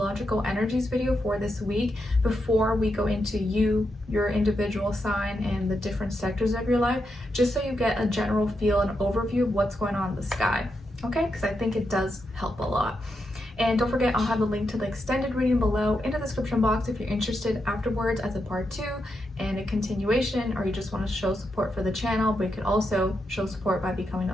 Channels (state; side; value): normal; both; correlation 0.84